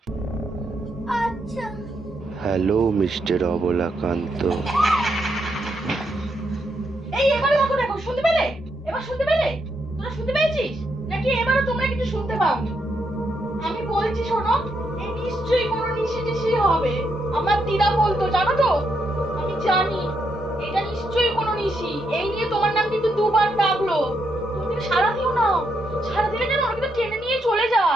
আচ্ছা। Hello mister Abalakanta. এই এবারে দেখো শুনতে পেলে? এবার শুনতে পেলে? তোরা শুনতে পেয়েছিস নাকি এবারও তোমরা কিছু শুনতে পাওনি? আমি বলছি শোনো, এই নিশ্চয়ই কোনো নিশি হবে। আমার দিদা বলতো, জানো তো? আমি জানি এটা নিশ্চয়ই কোনো নিশি। এই নিয়ে তোমার নাম কিন্তু দুবার ডাকলো। তুমি কিন্তু সারা দিও না, সারা দিলে যেন ওরা কিন্তু টেনে নিয়ে চলে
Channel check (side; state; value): both; normal; correlation 0.79